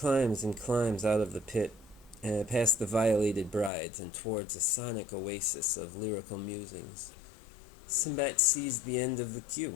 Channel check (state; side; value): drops out; right; at 3.7 s